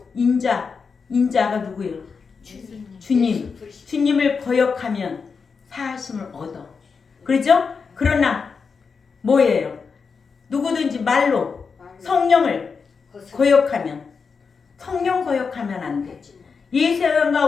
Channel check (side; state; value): right; quieter; 5.4 dB